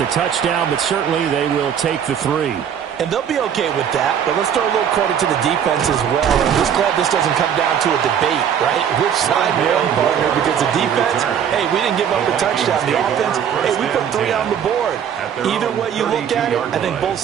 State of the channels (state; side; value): quieter; left; 8.5 dB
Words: touchdown, but certainly they will take the 3. And they'll be okay with that, but let's throw a little credit to the defense as well. And I'm just glad this doesn't come down to a debate, right? Which side won, partner? Because the defense, hey, we didn't give up a touchdown. The offense, hey, we put 3 on the board. Either way you look at it, I think both